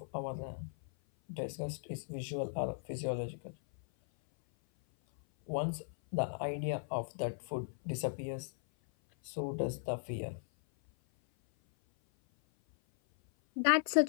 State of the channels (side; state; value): right; silent; 53 dB below the other